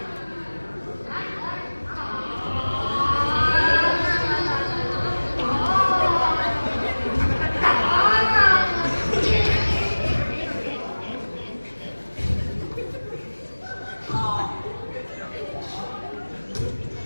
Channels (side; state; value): both; inverted; correlation -1.00